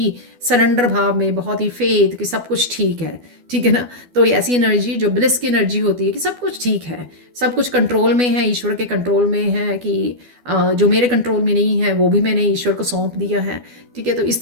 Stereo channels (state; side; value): late; left; 12 ms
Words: सरेंडर भाव में, बहुत ही फेथ कि सब कुछ ठीक है, ठीक है ना। तो ये ऐसी एनर्जी जो ब्लिस की एनर्जी होती है कि सब कुछ ठीक है, सब कुछ कंट्रोल में है, ईश्वर के कंट्रोल में है, कि जो मेरे कंट्रोल में नहीं है वो भी मैंने ईश्वर को सौंप दिया है, ठीक है। तो इस